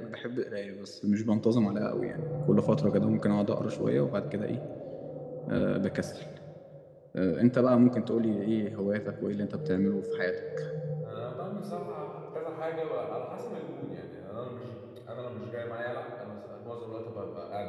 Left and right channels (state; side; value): identical; both; correlation 1.00